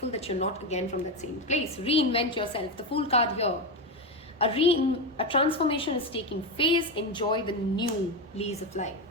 that you're not again from that same place. Reinvent yourself. The Fool card here. A transformation is taking phase. Enjoy the new lease of life.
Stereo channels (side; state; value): both; normal; correlation 0.13